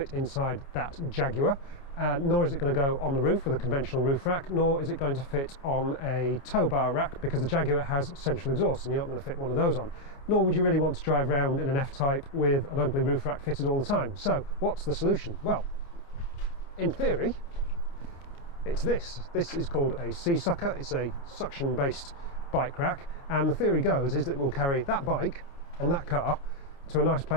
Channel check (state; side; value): late; right; 29 ms